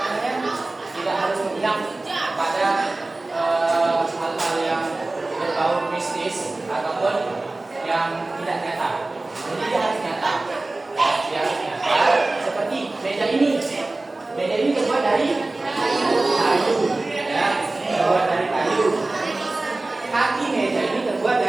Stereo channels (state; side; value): quieter; left; 3.0 dB